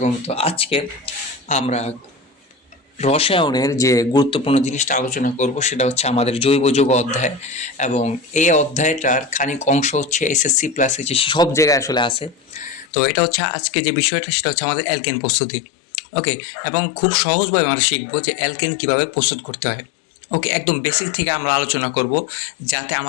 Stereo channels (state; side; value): drops out; right; at 12.9 s